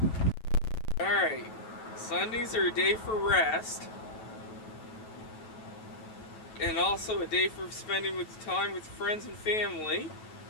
Alright, Sundays are a day for rest, and also a day for spending time with friends and family,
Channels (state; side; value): late; right; 9.2 ms